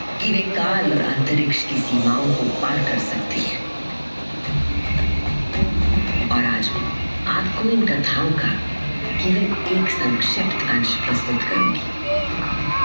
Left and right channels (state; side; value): inverted; both; correlation -1.00